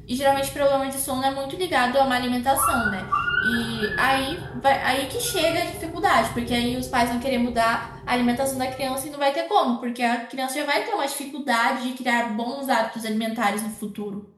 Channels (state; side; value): identical; both; correlation 1.00